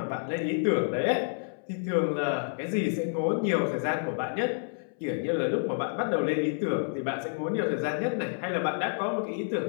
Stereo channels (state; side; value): silent; right; 58 dB below the other